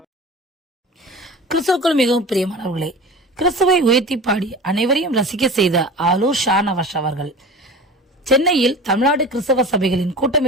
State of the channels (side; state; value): both; normal; correlation 0.35